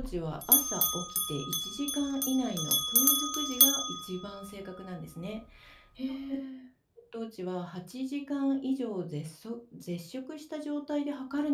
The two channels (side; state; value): both; identical; correlation 1.00